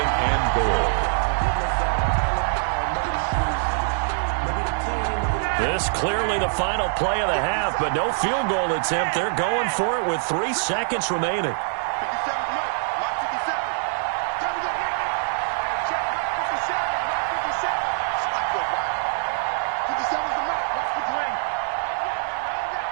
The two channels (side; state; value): left; silent; digital silence